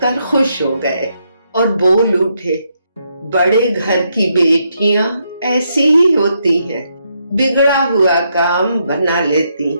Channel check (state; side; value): inverted; both; correlation -0.78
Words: खुश हो गए और बोल उठे, बड़े घर की बेटियां ऐसी ही होती हैं, बिगड़ा हुआ काम बना लेती